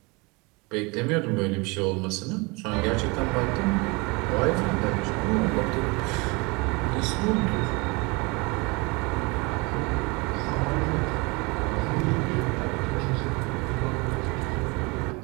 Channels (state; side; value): quieter; left; 26.8 dB